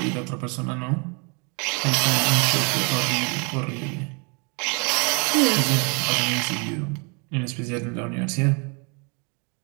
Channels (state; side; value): quieter; left; 33.5 dB